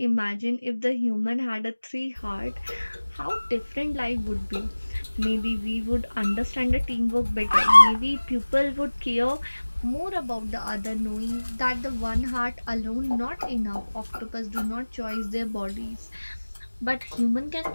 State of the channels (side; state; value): both; inverted; correlation -1.00